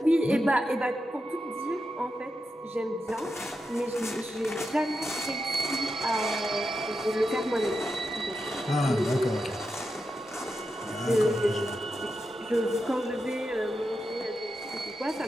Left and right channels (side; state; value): both; normal; correlation 0.87